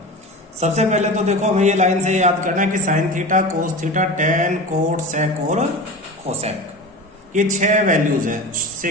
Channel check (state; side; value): normal; both; correlation 0.30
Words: सबसे पहले तो देखो हमें ये लाइन से याद करना है कि sine theta, cos theta, tan, cot, sec और कोसेक, ये 6 वैल्यूज है,